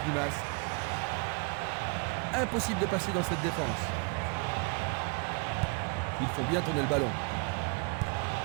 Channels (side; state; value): left; quieter; 33.9 dB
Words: Impossible de passer dans cette défense. Ils font bien tourner le ballon.